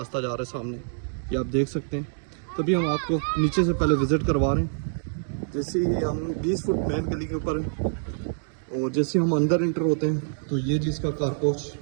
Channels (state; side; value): silent; left; digital silence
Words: जा रहा है सामने, ये आप देख सकते हैं। तभी हम आपको नीचे से पहले विज़िट करवा रहे हैं। जैसे ही हम 20 फुट मेन गली के ऊपर हैं और जैसे हम अंदर इंटर होते हैं तो ये जिसका कार पोच